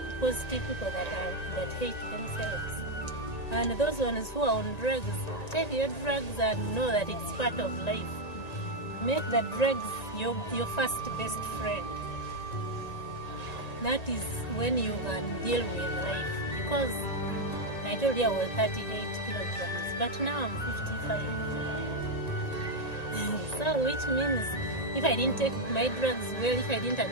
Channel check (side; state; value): right; late; 1.9 ms